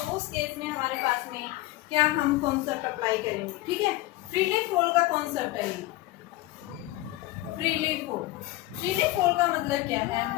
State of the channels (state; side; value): quieter; right; 17.9 dB